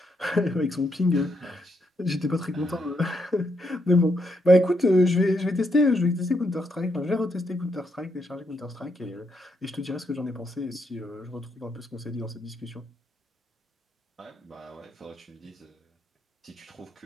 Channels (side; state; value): both; normal; correlation 0.78